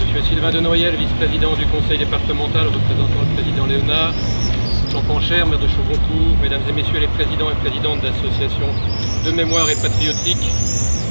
M. Sylvain de Noyel, vice-président du conseil départemental, représentant le président Léonard. Jean Pancher, maire de Chaugoncourt, mesdames et messieurs les présidents et présidentes d'associations de mémoire et patriotique,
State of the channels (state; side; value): inverted; both; correlation -1.00